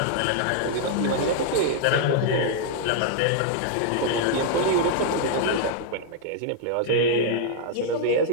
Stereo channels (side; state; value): both; different; correlation -0.01